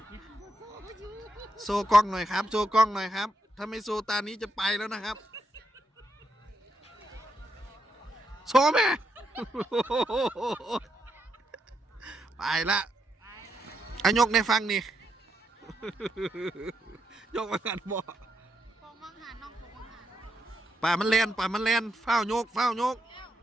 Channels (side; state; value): both; normal; correlation 0.81